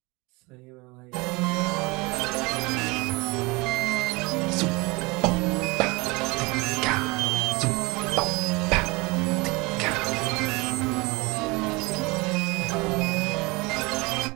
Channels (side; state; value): left; quieter; 25.4 dB